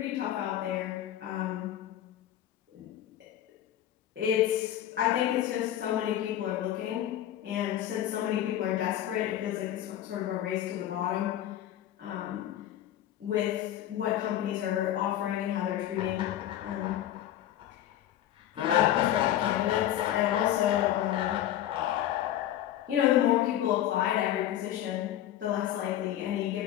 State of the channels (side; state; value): right; quieter; 12.1 dB